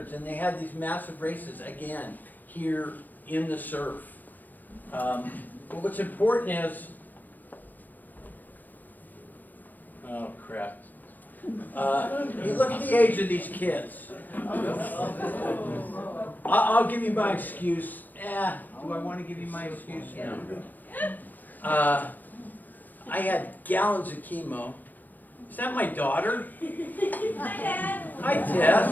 and they had these massive races, again, here in the surf. But what's important is, oh crap. You look at the age of these kids. I'll give you my excuse. Do I want to give you my excuse? No. I had gallons of chemo. Is that my daughter? Hi, Dad. Hi,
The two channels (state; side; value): late; right; 0.085 ms